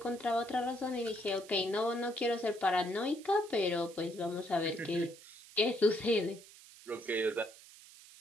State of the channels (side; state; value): right; noise; hiss, 20 dB below the sound